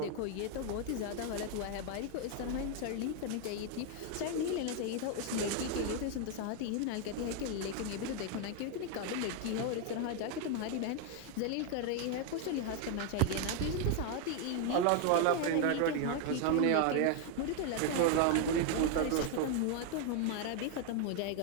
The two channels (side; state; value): both; different; correlation 0.01